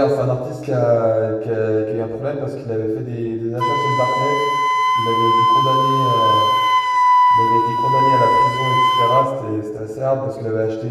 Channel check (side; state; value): both; identical; correlation 1.00